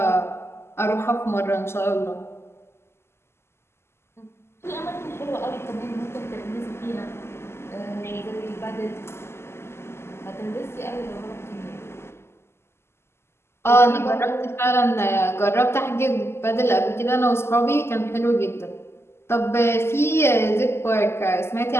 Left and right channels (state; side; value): late; right; 0.12 ms